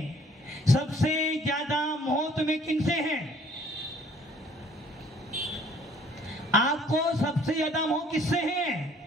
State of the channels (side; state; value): both; normal; correlation 0.57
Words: सबसे ज्यादा मोह तुम्हें किनसे है? आपको सबसे ज्यादा मोह किससे है?